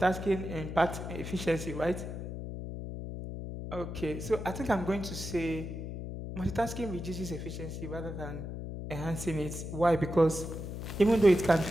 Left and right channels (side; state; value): left; noise; hum, 7 dB below the sound